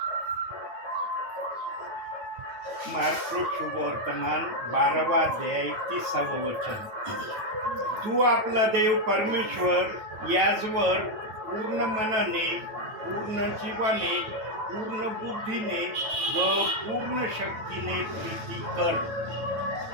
मार्क शुभवर्तमान 12वा अध्याय 30वे वचन. तू आपला देव परमेश्वर याजवर पूर्ण मनाने, पूर्ण जीवाने, पूर्ण बुद्धीने व पूर्ण शक्तीने प्रीती कर.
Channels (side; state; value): left; late; 9.2 ms